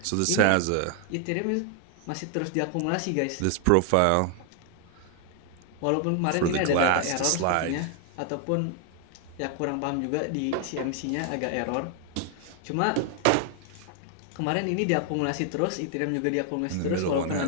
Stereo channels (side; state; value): both; different; correlation 0.00